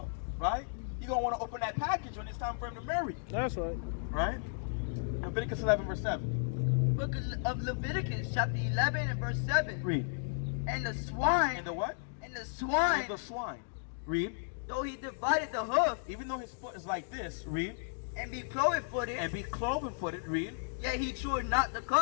right? You're going to want to open that package when it's time for him to marry. That's right. Right? Leviticus 11 verse 7. Book of Leviticus, chapter 11 and verse 7. Read. And the swine. And the what? And the swine. And the swine. Read. Though he divided the hoof. Even though his foot is like this. Read. And be cloven-footed. And be cloven-footed. Read. Yet he chewed not the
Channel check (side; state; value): right; silent; digital silence